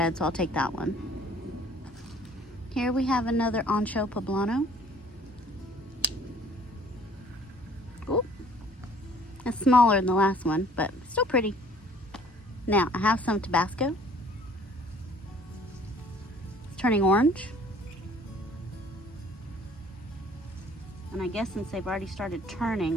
so I'll take that one. Here we have another ancho poblano. Ooh, it's smaller than the last one, but still pretty. Now, I have some Tabasco. It's turning orange. And I guess since they've already started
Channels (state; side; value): normal; both; correlation 0.55